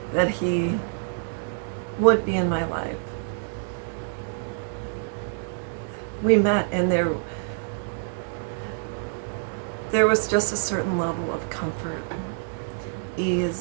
that he would be in my life. We met, and there was just a certain level of comfort,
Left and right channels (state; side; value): silent; left; digital silence